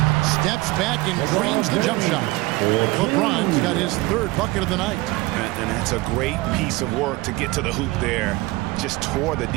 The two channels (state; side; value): quieter; left; 21.0 dB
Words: Steps back and drains the jump shot. LeBron's got his 3rd bucket of the night. And that's a great piece of work to get to the hoop there. Just tore the